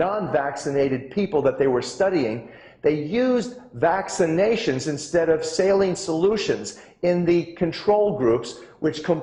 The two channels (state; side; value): identical; both; correlation 1.00